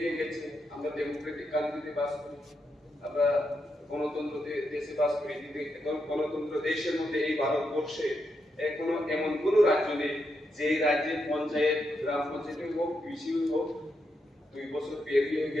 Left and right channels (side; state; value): both; normal; correlation 0.83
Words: গেছে। আমরা ডেমোক্রেটিক কান্ট্রিতে বাস করি, আমরা গণতন্ত্র দেশে বাস করি, কিন্তু গণতন্ত্র দেশের মধ্যে এই ভারতবর্ষে এখনো এমন কোন রাজ্য নেই যে রাজ্যের পঞ্চায়েত, গ্রাম পঞ্চায়েত হোক, বিসি হোক, 2 বছর পেরিয়ে